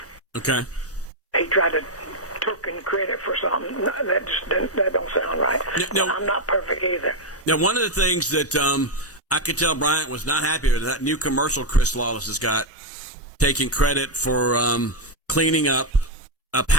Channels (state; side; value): normal; both; correlation 0.01